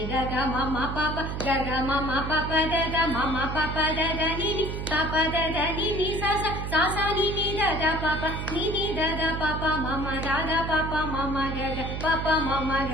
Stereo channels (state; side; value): noise; right; hum, 4 dB below the sound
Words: ga ga ma ma pa pa ga ga ma ma pa pa da da ma ma pa pa da da ni ni pa pa da da ni ni sa sa sa sa ni ni da da pa pa ni ni da da pa pa ma ma da da pa pa ma ma ga ga pa pa ma ma